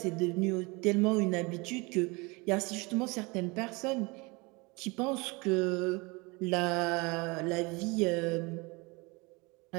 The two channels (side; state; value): left; quieter; 26.6 dB